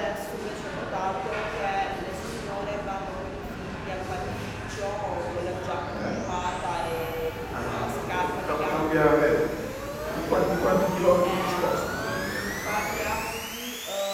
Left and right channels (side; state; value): both; identical; correlation 1.00